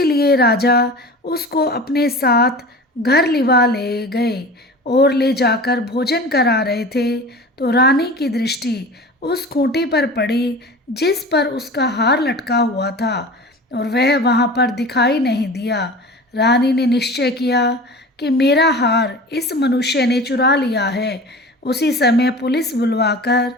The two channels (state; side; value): normal; both; correlation 0.36